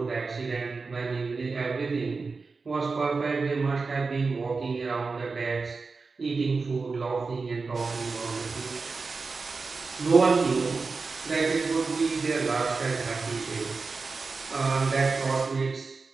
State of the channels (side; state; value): left; quieter; 4.3 dB